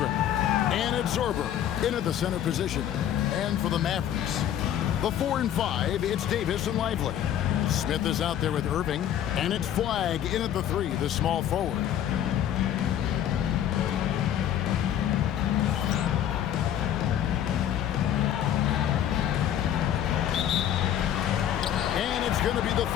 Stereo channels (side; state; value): right; quieter; 10.6 dB